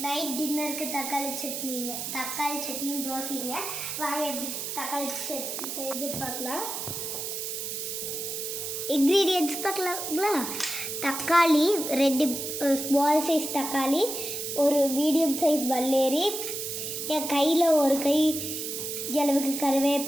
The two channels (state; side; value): noise; right; hiss, 5 dB below the sound